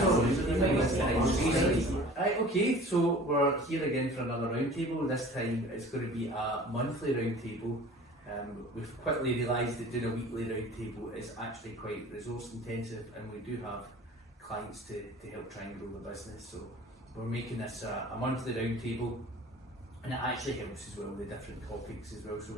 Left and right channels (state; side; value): normal; both; correlation 0.44